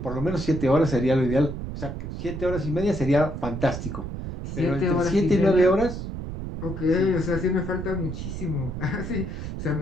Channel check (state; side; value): noise; right; rumble, 6 dB below the sound